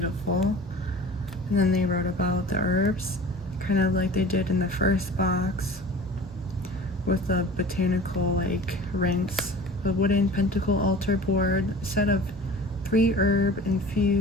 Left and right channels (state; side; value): normal; both; correlation 0.41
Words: And then they wrote about the herbs, kind of like they did in the first box with the botanical like rinse. A wooden pentacle altar board, a set of 3 herb